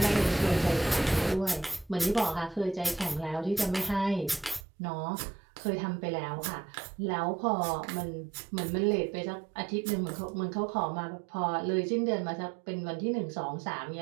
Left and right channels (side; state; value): left; drops out; at 4.7 s